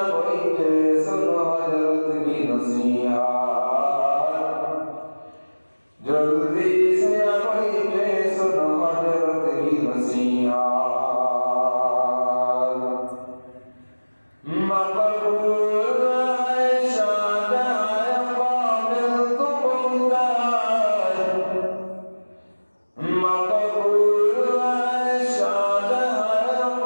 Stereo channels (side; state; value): both; inverted; correlation -1.00